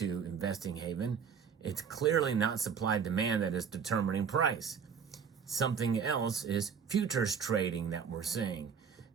Investing Haven. It's clearly not supply-demand that is determining price. Something else is futures trading that we're seeing,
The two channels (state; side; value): quieter; left; 6.7 dB